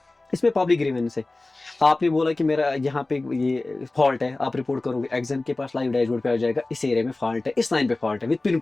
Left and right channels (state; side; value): quieter; right; 3.0 dB